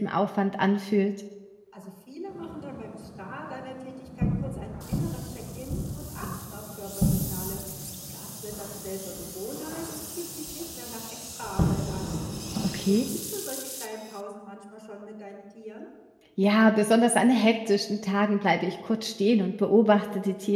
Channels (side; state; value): both; identical; correlation 1.00